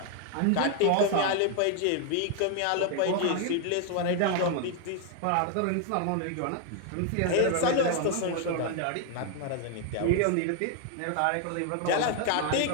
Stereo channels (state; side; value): different; both; correlation 0.00